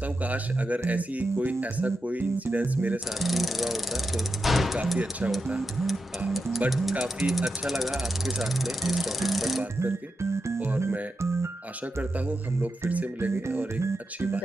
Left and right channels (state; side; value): normal; both; correlation 0.88